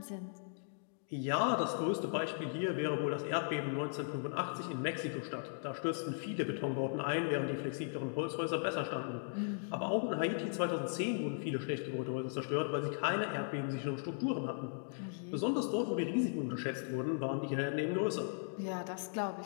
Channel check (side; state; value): right; silent; digital silence